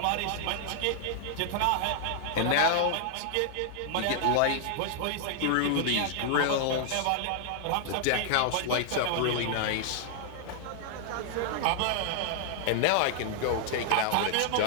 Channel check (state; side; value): different; both; correlation 0.00